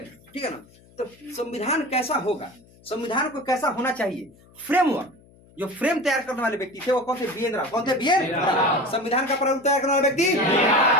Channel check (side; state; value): left; noise; hum, 27 dB below the sound